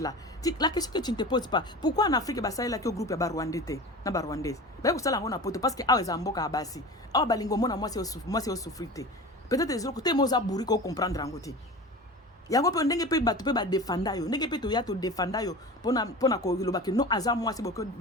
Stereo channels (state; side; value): normal; both; correlation 0.33